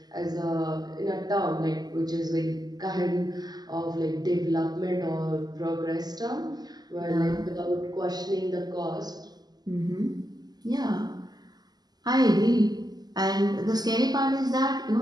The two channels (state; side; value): late; left; 0.20 ms